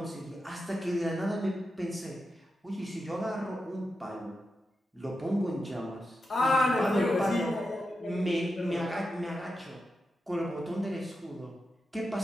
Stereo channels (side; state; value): both; normal; correlation 0.89